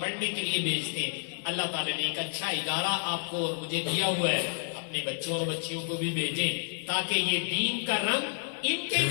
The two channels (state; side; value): silent; right; 58 dB below the other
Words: پڑھنے کے لیے بھیجتے ہیں، اللہ تعالیٰ نے ایک اچھا ادارہ آپ کو اور مجھے دیا ہوا ہے، اپنے بچوں اور بچیوں کو بھی بھیجیں تاکہ یہ دین کا رنگ ان کے